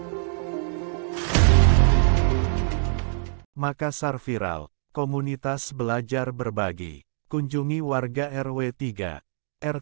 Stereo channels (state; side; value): silent; left; 59 dB below the other